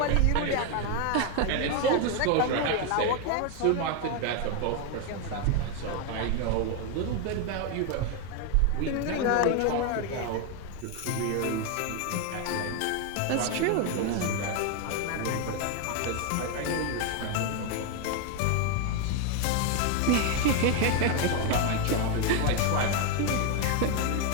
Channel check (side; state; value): both; different; correlation 0.01